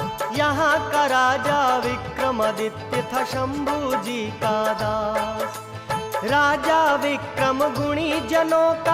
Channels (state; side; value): identical; both; correlation 1.00